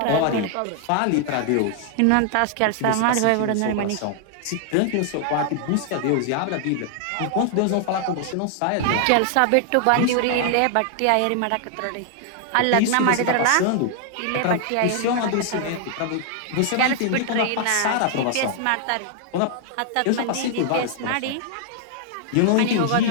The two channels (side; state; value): both; different; correlation 0.00